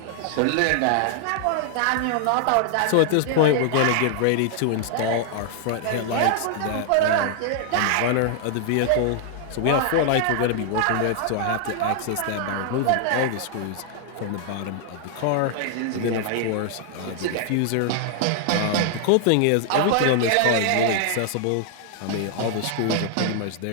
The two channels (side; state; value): both; different; correlation 0.00